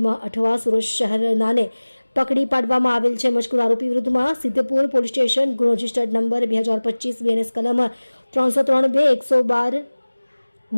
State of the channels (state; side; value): inverted; both; correlation -1.00